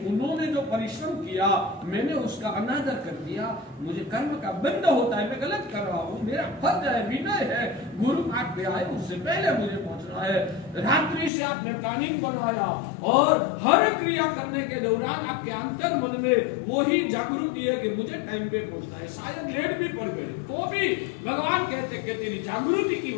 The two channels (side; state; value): right; drops out; at 11.3 s